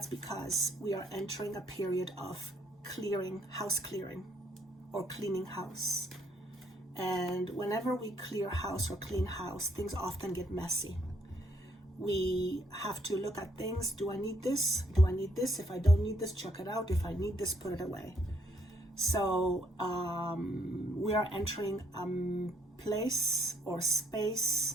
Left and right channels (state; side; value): normal; both; correlation 0.70